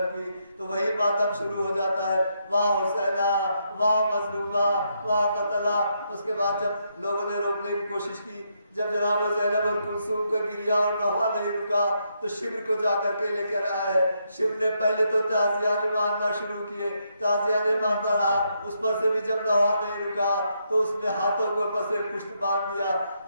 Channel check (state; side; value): inverted; both; correlation -0.78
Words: کی تو وہی ماتم شروع ہو جاتا ہے. واہ حسینہ واہ مظلومہ واہ قتلہ. اس کے بعد جب لوگوں نے روکنے کی کوشش کی جب جناب زینب اور کلثوم کا گریا اور نوحہ نہیں رکا تو شبر کو جا کر کے لے کر آئے. شبر نے پہلے تو تعزیانے مارنا شروع کیے تعزیانے مارتا رہا. اس پر سے بھی جب نوحہ نہیں رکا تو اس نے ہاتھوں کو پس پشت باندھ دیا.